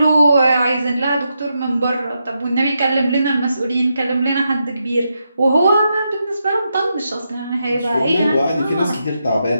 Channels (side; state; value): both; inverted; correlation -0.84